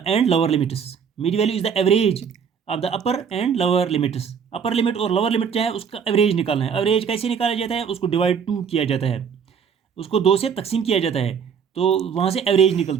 and lower limits. Mid value is the average of the upper and lower limits. Upper limit और lower limit क्या है, उसका average निकालना है। Average कैसे निकाला जाता है, उसको डिवाइड 2 किया जाता है, उसको 2 से तकसीम किया जाता है, तो वहाँ से एवरेज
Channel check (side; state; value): left; quieter; 6.9 dB